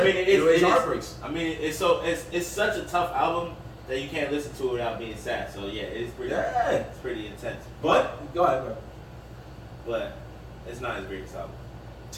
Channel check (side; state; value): both; identical; correlation 1.00